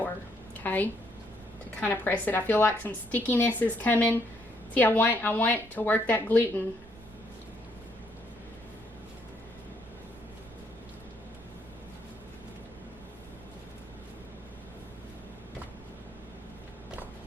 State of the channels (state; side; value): noise; right; rumble, 21 dB below the sound